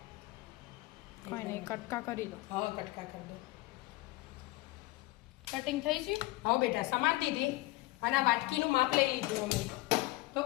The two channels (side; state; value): right; quieter; 19.8 dB